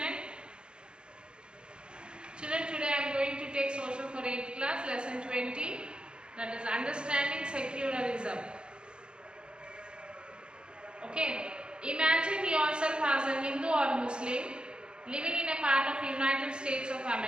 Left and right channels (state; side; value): late; left; 0.052 ms